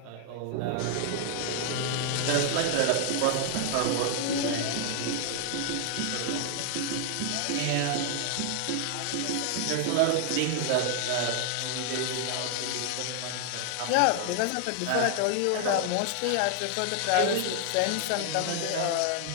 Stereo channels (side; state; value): both; different; correlation 0.00